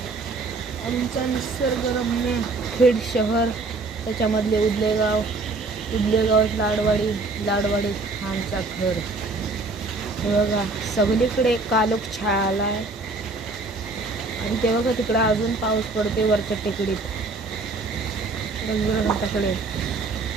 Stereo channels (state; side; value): quieter; left; 3.6 dB